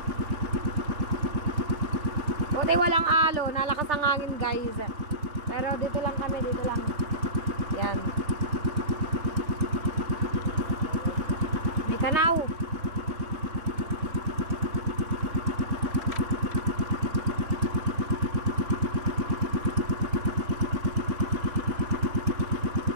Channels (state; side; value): late; left; 3.7 ms